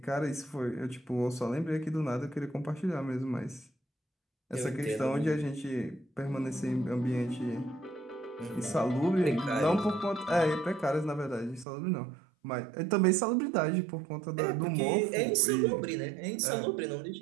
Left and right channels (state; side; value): drops out; left; at 11.7 s